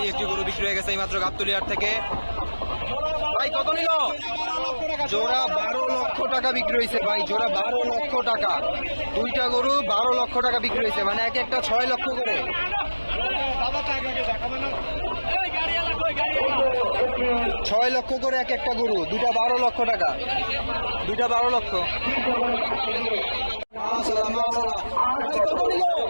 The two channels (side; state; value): both; inverted; correlation -1.00